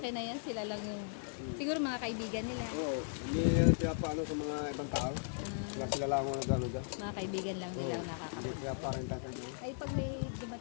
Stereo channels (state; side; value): silent; right; 53 dB below the other